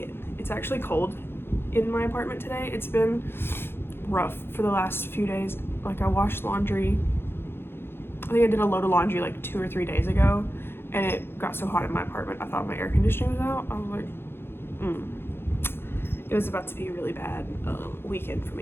It's actually cold in my apartment today. It's been rough for the last few days. Like, I washed laundry. I think I did a load of laundry like 2 or 3 days ago, and it got so hot in my apartment I thought my air conditioning was out. I was like, It was about to be a really bad weekend for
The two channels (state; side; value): late; right; 0.11 ms